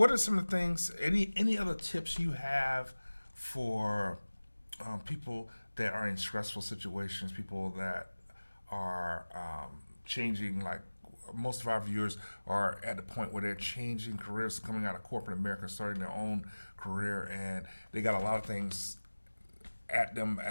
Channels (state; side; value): inverted; both; correlation -1.00